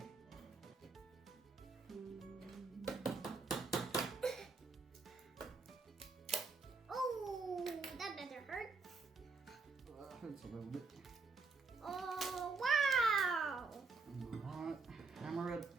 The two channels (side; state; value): left; quieter; 4.2 dB